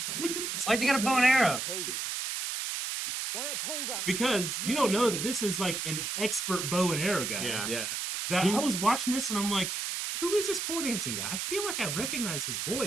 Why'd you got a bow and arrow? Cozy. Why a pole dance? Because you don't know that this is like an expert bow and arrow guy. Yeah. That I was watching this and I'm like, who is this pole dancing guy? I feel like I recognize his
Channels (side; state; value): right; noise; hiss, 3 dB below the sound